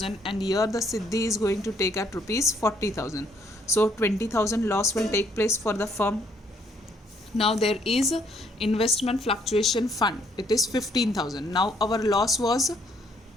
and here the Siddhi is going to take at rupees 40,000. So 20,000 loss will take place for the firm. Now there is investment fluctuation fund. It is 15,000. Now our loss was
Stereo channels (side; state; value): both; normal; correlation 0.67